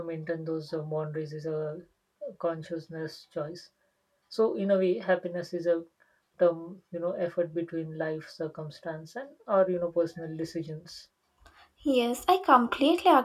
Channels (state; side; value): identical; both; correlation 1.00